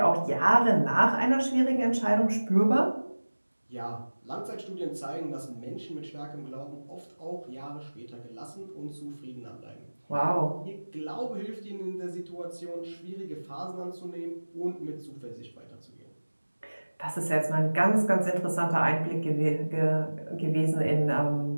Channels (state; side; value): inverted; both; correlation -1.00